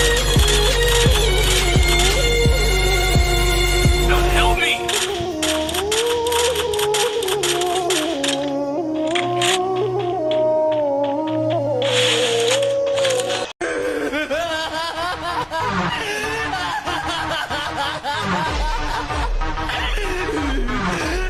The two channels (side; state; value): both; identical; correlation 1.00